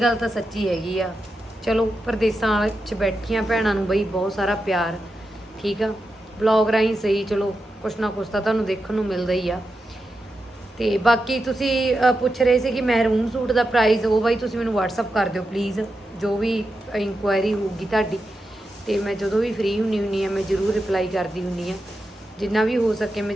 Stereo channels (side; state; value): both; normal; correlation 0.88